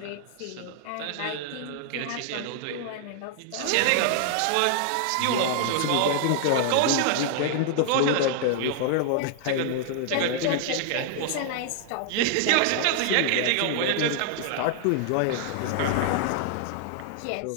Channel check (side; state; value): both; different; correlation 0.00